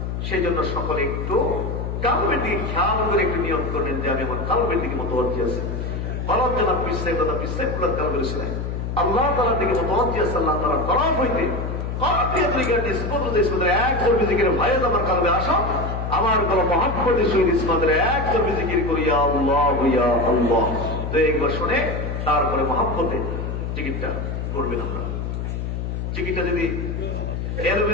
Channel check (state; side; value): noise; left; hum, 3 dB below the sound